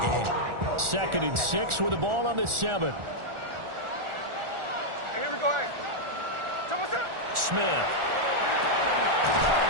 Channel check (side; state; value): left; late; 1.4 ms